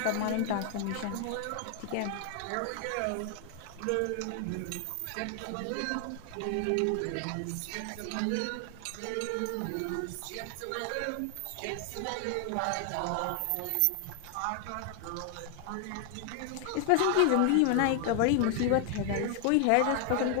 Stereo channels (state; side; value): different; both; correlation 0.00